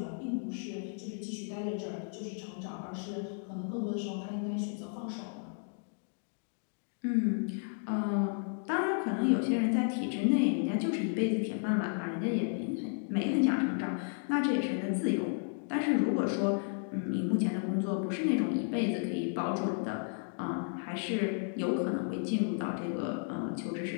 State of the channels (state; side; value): silent; right; 56 dB below the other